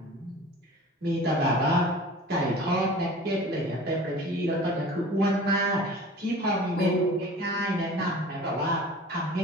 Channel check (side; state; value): both; normal; correlation 0.41